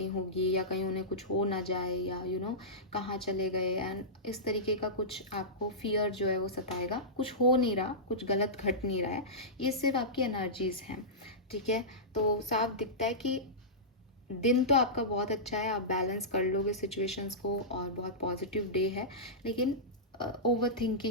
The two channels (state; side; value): normal; both; correlation -0.16